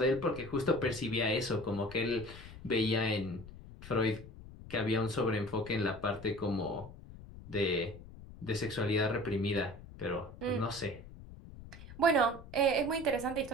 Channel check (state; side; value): noise; left; rumble, 16 dB below the sound